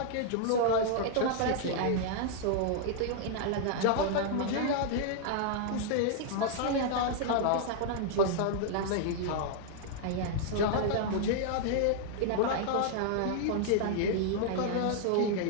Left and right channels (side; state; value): both; different; correlation -0.01